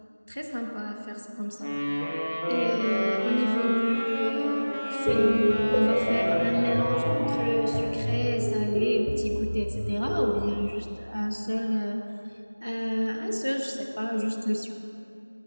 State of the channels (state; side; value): inverted; both; correlation -1.00